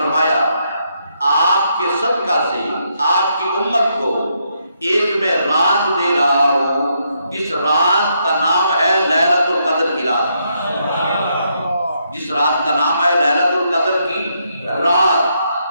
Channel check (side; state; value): both; inverted; correlation -0.77